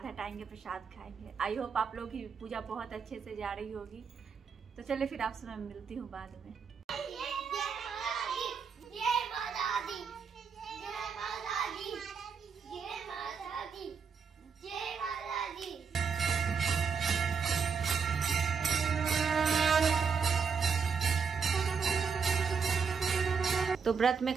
हटाएंगे, प्रसाद खाएंगे। आई होप आप लोग की पूजा बहुत अच्छे से जा रही होगी। तो चलिए फिर आपसे मैं मिलती हूँ बाद में। तो व्रत में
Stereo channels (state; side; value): quieter; left; 5.9 dB